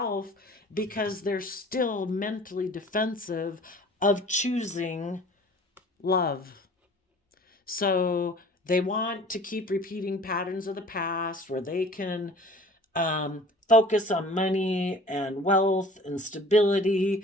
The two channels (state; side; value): normal; both; correlation 0.47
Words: because they're still mentally defensive of choosing love. So they want to keep repeating patterns of the past where they can focus on money and wealth and stability,